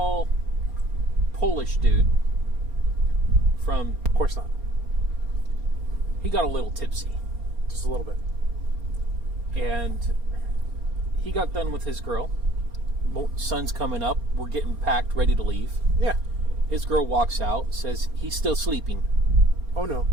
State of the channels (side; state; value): left; late; 4.3 ms